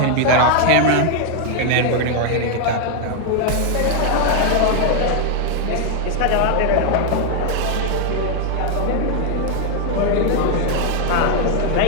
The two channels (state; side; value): different; both; correlation 0.00